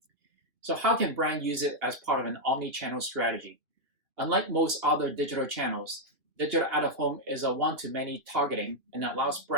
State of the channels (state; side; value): late; left; 3.1 ms